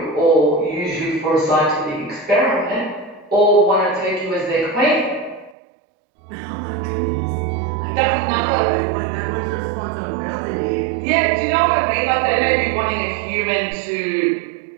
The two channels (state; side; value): drops out; left; at 5.6 s